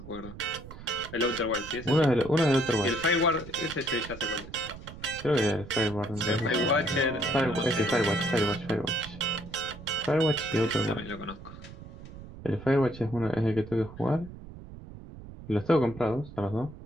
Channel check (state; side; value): noise; right; rumble, 15 dB below the sound